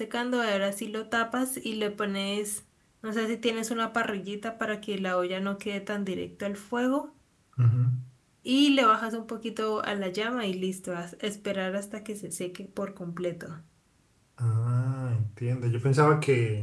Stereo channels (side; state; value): both; identical; correlation 1.00